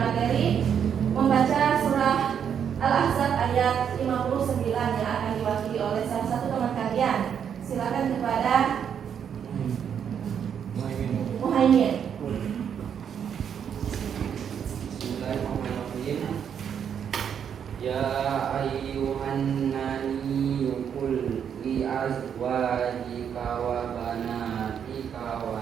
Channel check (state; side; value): quieter; left; 8.1 dB